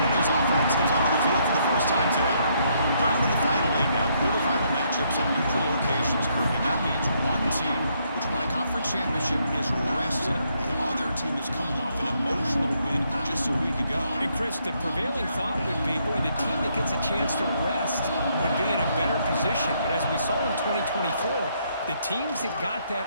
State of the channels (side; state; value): both; inverted; correlation -0.73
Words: offense comes onto the field for the first time today. Down to the final 8 now. Quarterfinal matchups at neutral locations, Kirk. And that means one team, which won a conference championship, is rested. The other team is coming off an emotional win just a week ago. And Chris, the prevailing thought would be, boy, the team that gets a chance to rest would be in a better position. But as we saw in 2024, the teams that got